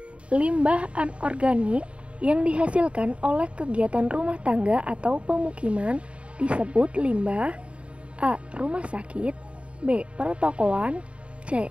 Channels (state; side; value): late; left; 0.061 ms